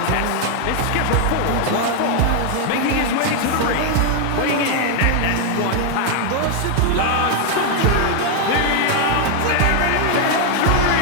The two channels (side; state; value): both; different; correlation 0.00